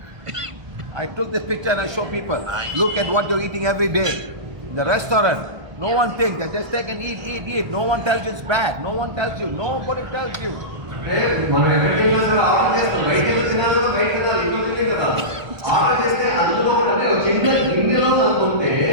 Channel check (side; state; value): left; late; 1.2 ms